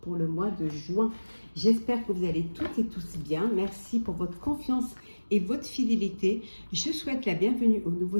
pour le mois de juin. J'espère que vous allez toutes et tous bien. Merci pour votre confiance et votre fidélité. Je souhaite la bienvenue aux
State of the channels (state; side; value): inverted; both; correlation -1.00